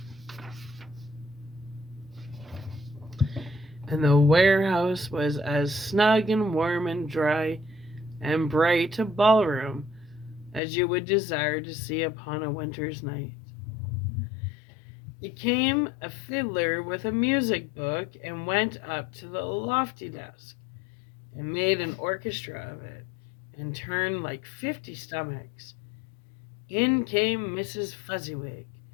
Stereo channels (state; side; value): drops out; right; at 10.6 s